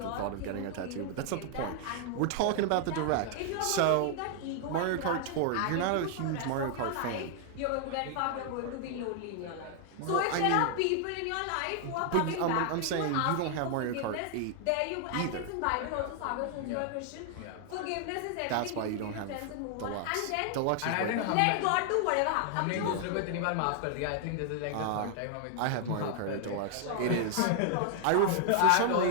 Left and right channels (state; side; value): different; both; correlation 0.00